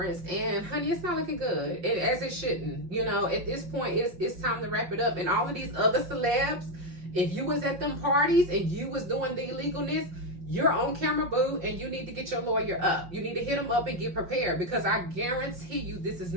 and honey, it's not looking good, and as it shouldn't. You know, at this point, it's time to wrap it up. And all of these other celebs, if you was at them parties and you was doing the illegalness, you're on camera, boo, and you need to get your lawyer up. You need to hit him up and get prepared, because I guarantee you this is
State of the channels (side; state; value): left; late; 5.6 ms